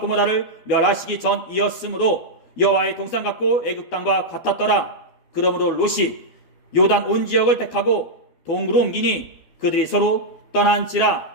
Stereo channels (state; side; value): late; right; 12 ms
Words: 고모라를 멸하시기 전이었으므로 여호와의 동산 같고 애굽 땅과 같았더라. 그러므로 롯이 요단 온 지역을 택하고 동으로 옮기니 그들이 서로